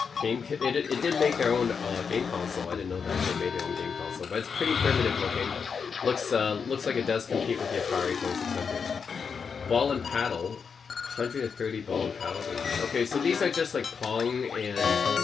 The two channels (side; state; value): right; quieter; 6.0 dB